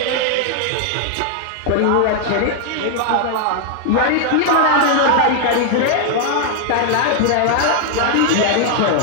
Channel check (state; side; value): different; both; correlation 0.00